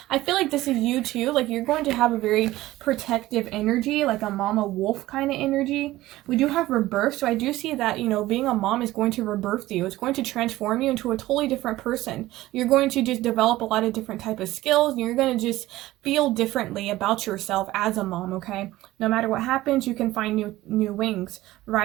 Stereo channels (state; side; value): quieter; left; 16.8 dB